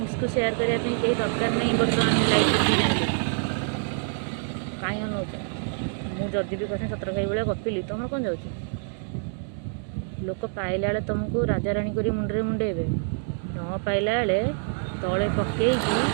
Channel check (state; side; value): silent; left; 57 dB below the other